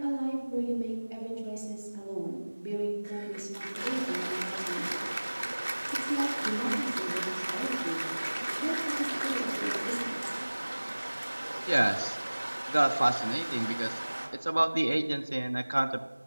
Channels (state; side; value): inverted; both; correlation -1.00